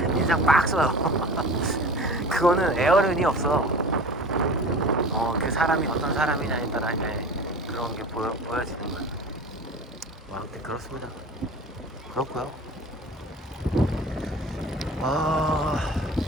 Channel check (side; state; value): both; normal; correlation 0.37